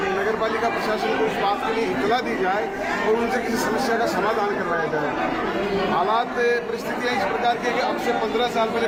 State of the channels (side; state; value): both; identical; correlation 1.00